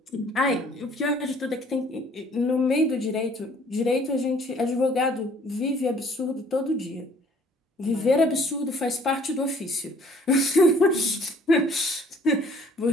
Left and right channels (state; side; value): normal; both; correlation 0.57